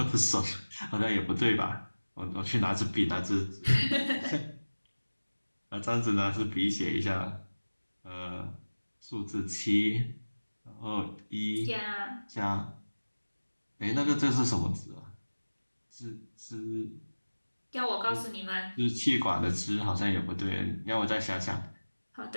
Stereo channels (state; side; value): inverted; both; correlation -1.00